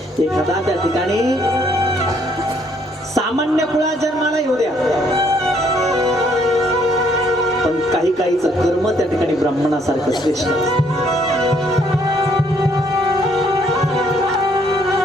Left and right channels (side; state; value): both; normal; correlation 0.67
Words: एखादा त्या ठिकाणी सामान्य कुळात जन्माला येऊ द्या, पण काही काहीच कर्म त्या ठिकाणी ब्राह्मणासारखं श्रेष्ठ असतं.